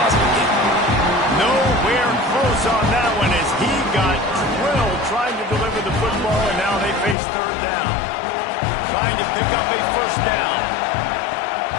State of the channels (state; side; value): drops out; right; at 7.2 s